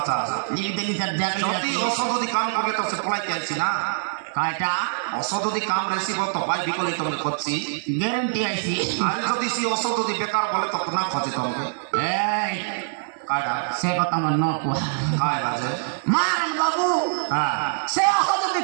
चा लिपि देली सर जाके যদি অসদদি কাম করলে তো সে পলাই আইছি না কাটা অসদদি কাম রেসিব তো ভাই বিকলি তুমি করছি গ্যারান্টি আইছি আর যদি সে অসদদি বেকার বলে তো না খোঁজে তোমাকে এই কাটা সে কথা মন ন কো কাই বাজে মারন বাবু সে অসদদি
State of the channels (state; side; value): silent; left; 59 dB below the other